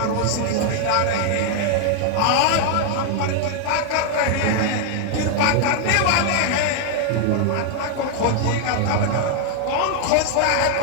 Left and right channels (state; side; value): different; both; correlation 0.00